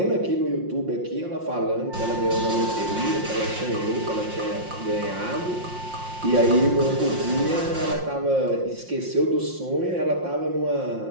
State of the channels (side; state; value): left; late; 5.6 ms